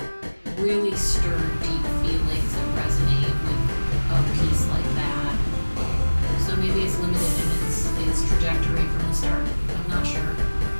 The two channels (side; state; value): both; inverted; correlation -1.00